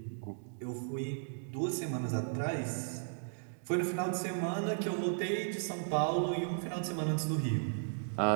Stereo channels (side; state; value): left; silent; digital silence